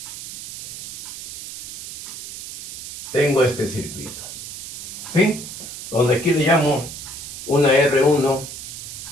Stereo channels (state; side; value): noise; right; hiss, 10 dB below the sound